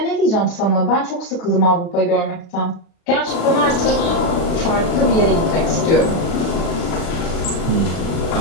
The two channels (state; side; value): late; right; 36 ms